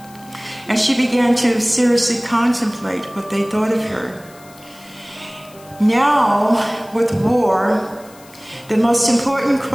And she began to seriously contemplate what they thought of her. Now, with war, the most important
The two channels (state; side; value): noise; left; hiss, 24 dB below the sound